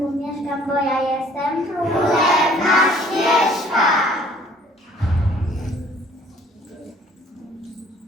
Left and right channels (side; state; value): both; normal; correlation 0.56